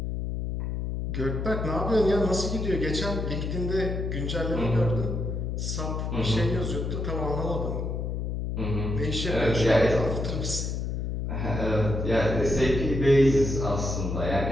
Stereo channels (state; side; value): noise; left; hum, 2 dB below the sound